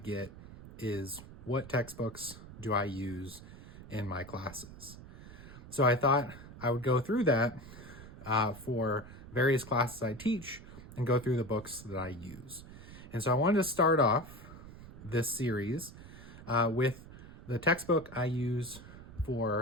is, what textbooks do I use in my classes? So I thought I would go through that for various classes I teach and go through the books that I use. And so I wanted to start off this series with the textbook I use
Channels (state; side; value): noise; right; rumble, 16 dB below the sound